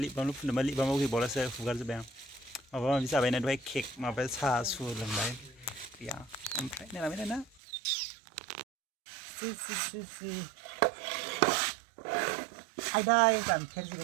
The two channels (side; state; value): left; drops out; at 7.6 s